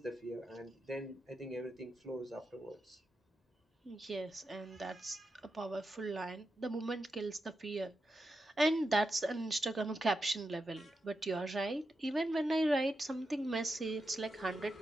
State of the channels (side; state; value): both; normal; correlation 0.88